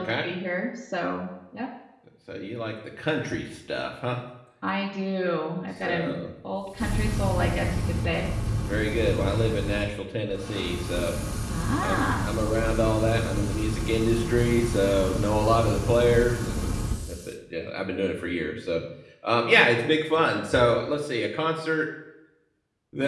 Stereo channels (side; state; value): both; identical; correlation 1.00